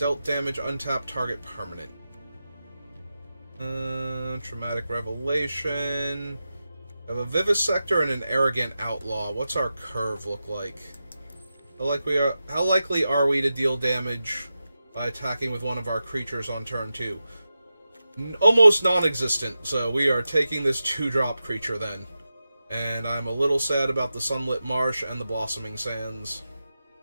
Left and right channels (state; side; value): inverted; both; correlation -0.91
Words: damage, untap target permanent. Traumatic Revelation. We have a Vivisector and an Arrogant Outlaw. What's our curve look like? How likely are we to deal damage by attacking with one of our creatures on turn 2? Almost non-existent, so we are taking this 2-drop creature then. And I'm a little sad about the Sunlit Marsh and the Blossoming Sands